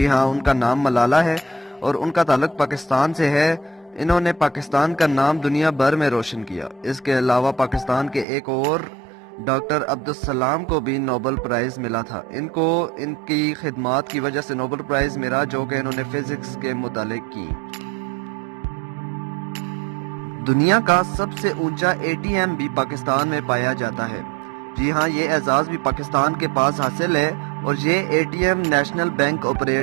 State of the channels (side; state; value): left; drops out; at 8.2 s